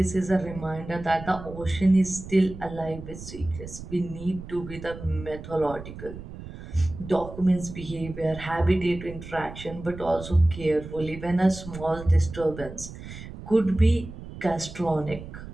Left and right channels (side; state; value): right; noise; rumble, 12 dB below the sound